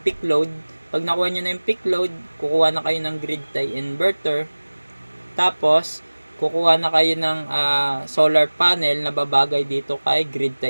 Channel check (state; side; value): inverted; both; correlation -1.00